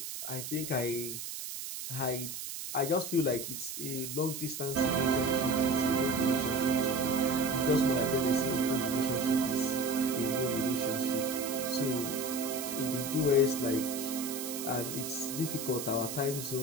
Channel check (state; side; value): noise; right; hiss, 7 dB below the sound